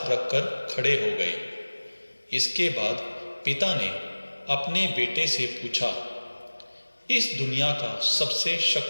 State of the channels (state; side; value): inverted; both; correlation -1.00